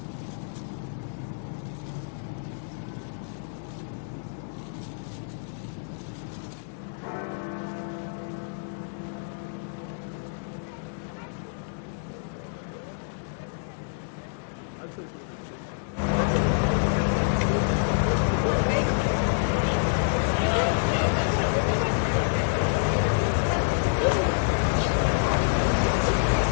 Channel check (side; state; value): right; silent; digital silence